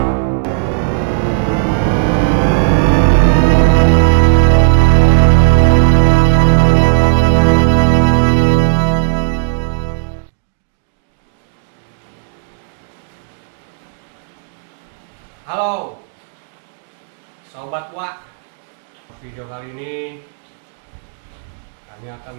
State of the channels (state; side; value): silent; left; digital silence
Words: Halo Sobat Wak, video kali ini kami akan